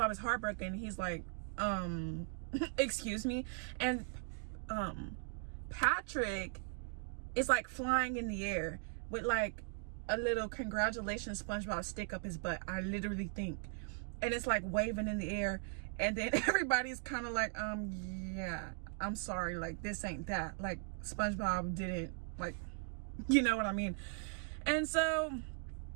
is heartbroken. He's like, excuse me. And Patrick is like flying in the air with like a little congratulations SpongeBob stick up his butt, I literally think. And it's like waving in the air. And then everybody's kind of like, yeah, I'm sorry. Like, this ain't that. Like, SpongeBob didn't, like, you know what I mean? And so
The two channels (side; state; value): left; silent; 52 dB below the other